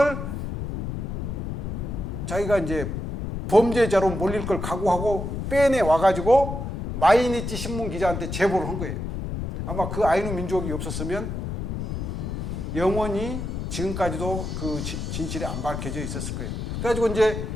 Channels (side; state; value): left; noise; rumble, 5 dB below the sound